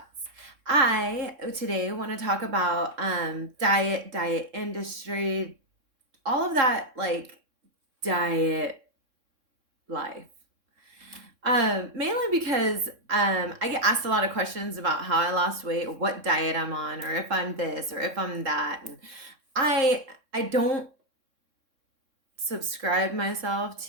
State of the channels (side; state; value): left; late; 3.6 ms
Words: I today want to talk about diet industry, all of that like diet life. Mainly because I get asked a lot of questions about how I lost weight, or what diet I'm on, or if I'm this or if I'm that, and I don't subscribe myself